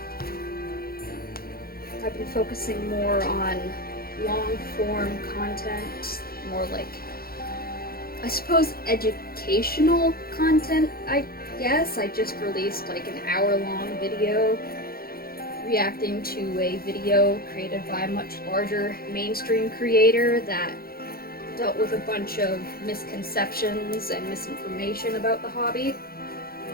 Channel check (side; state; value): right; late; 0.44 ms